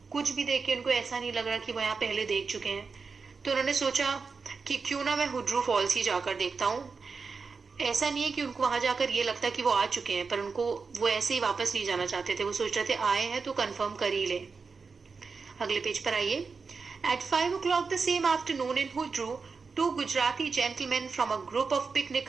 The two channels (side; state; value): left; quieter; 4.8 dB